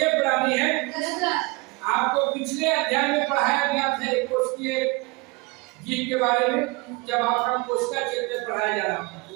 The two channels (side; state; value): left; quieter; 26.7 dB